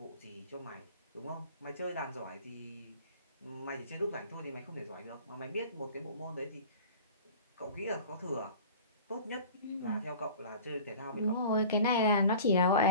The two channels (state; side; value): inverted; both; correlation -0.41